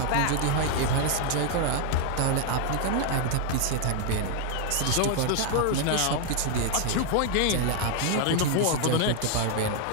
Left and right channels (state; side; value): different; both; correlation 0.00